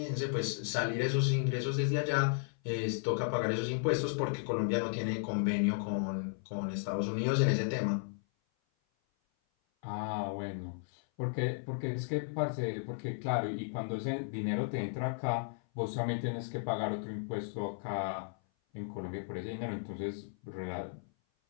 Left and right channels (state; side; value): silent; right; 55 dB below the other